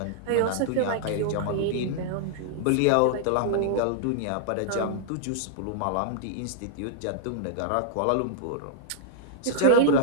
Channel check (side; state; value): both; different; correlation -0.01